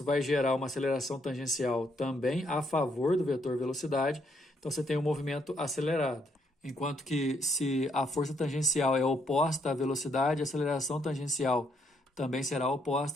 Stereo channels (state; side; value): normal; both; correlation 0.73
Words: vai gerar uma aceleração tangencial também a favor do vetor velocidade, então você tem um movimento acelerado. Enquanto que se a força tangencial é oposta à velocidade, a aceleração tangencial também será